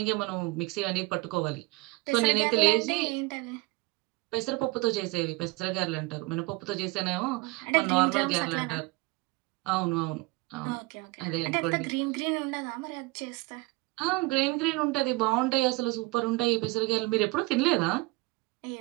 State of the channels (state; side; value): quieter; left; 23.4 dB